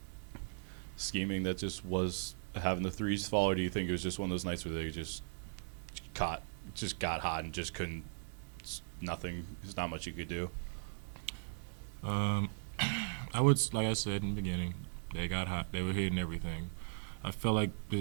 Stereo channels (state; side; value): silent; left; digital silence